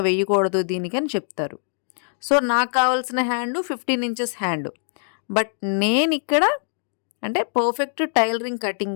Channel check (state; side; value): silent; right; digital silence